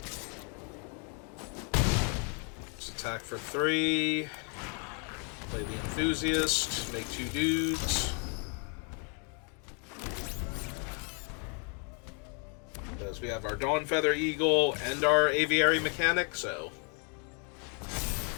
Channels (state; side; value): quieter; right; 38.4 dB